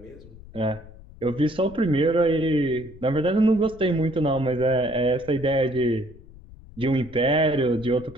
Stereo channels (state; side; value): noise; left; rumble, 20 dB below the sound